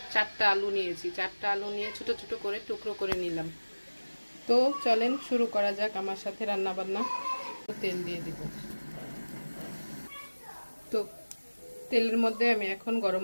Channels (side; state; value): both; inverted; correlation -1.00